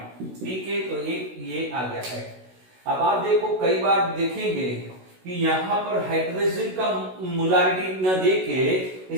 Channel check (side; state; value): left; late; 16 ms